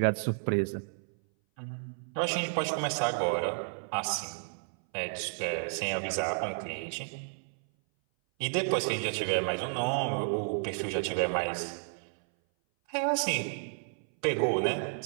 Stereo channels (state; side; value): silent; left; 57 dB below the other